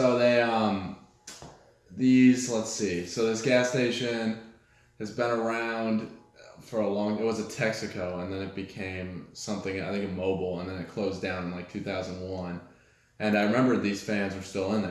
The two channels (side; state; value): both; identical; correlation 1.00